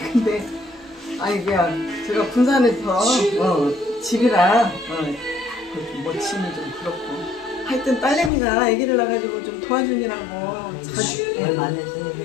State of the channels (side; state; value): right; drops out; at 8.3 s